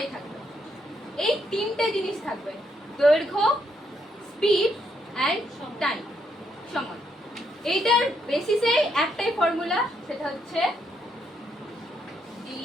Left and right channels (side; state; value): both; normal; correlation 0.76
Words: থাকবে। এই তিনটে জিনিস থাকবে: দৈর্ঘ্য, স্পিড অ্যান্ড টাইম, সময়। এইটার বেসিসে একটাই ফর্মুলা, সেটা হচ্ছে d